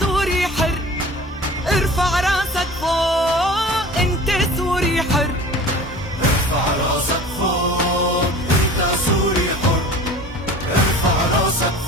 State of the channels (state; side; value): normal; both; correlation 0.41